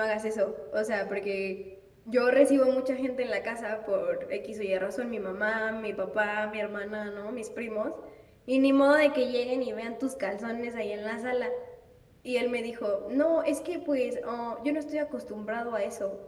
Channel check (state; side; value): identical; both; correlation 1.00